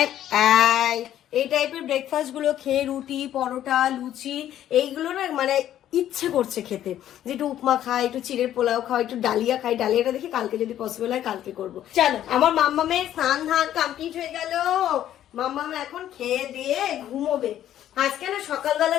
এই টাইপের ব্রেকফাস্ট গুলো খেয়ে রুটি, পরোটা, লুচি এইগুলো না মানে ইচ্ছে করছে খেতে, যে একটু উপমা খাই, একটু চিড়ের পোলাও খাই, একটু ডালিয়া খাই। ডালিয়াটা দেখি কালকে যদি পসিবল হয় কালকে করবো। চলো, আমার মাম্মামের স্নান ধান কমপ্লিট হয়ে গেল। মাম্মাম এখন খেয়ে দিয়ে ঘুমোবে। আজকে না সকালবেলা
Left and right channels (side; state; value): right; quieter; 11.7 dB